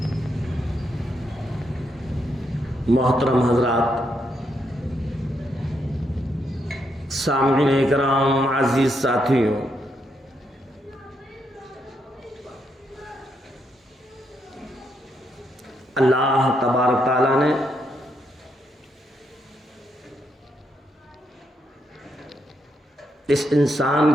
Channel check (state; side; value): normal; both; correlation 0.78